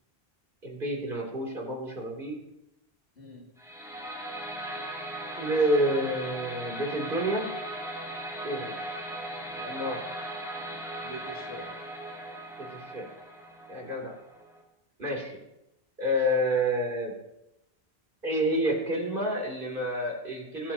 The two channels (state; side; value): normal; both; correlation 0.23